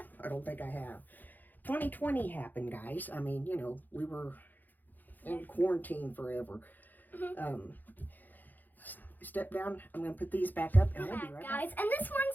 I don't think I have. 2020 happened, guys. I mean, you know, we were in quarantine forever. Step down. I'm going to put these back up and we'll be right guys. back. And this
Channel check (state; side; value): late; right; 0.086 ms